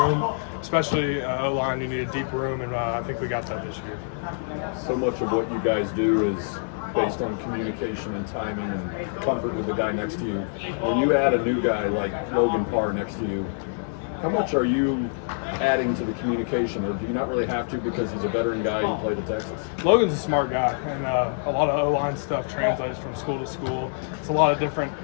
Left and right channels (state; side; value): silent; right; digital silence